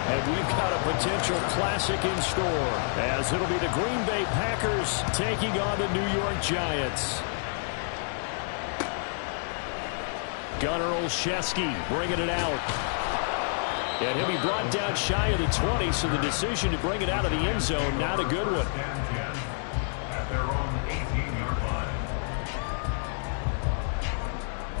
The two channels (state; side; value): silent; right; 59 dB below the other